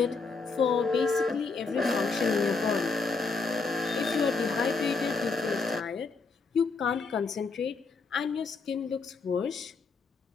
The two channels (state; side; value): quieter; right; 4.4 dB